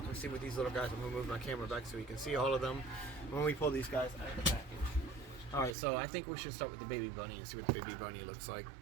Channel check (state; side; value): drops out; left; at 5.8 s